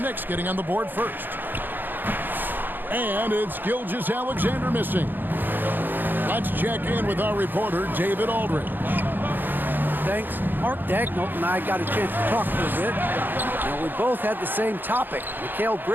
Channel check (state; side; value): late; left; 0.091 ms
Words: Knicks getting on the board first. And it's Gilgeous-Alexander missing. Let's check in with our reporter, David Aldridge. Thanks. Mark Dagnall and I got a chance to talk for a bit. Now, we both had the same topic, Mikal